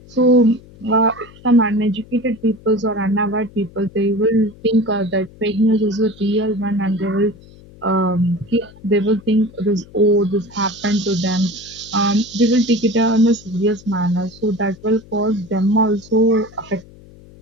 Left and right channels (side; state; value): left; noise; hum, 22 dB below the sound